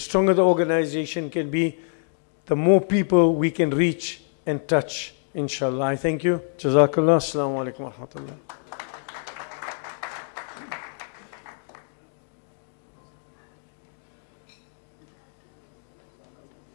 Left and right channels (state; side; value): silent; right; digital silence